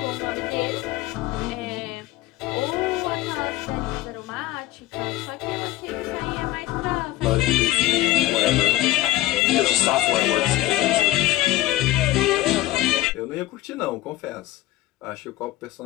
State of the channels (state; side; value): quieter; right; 16.5 dB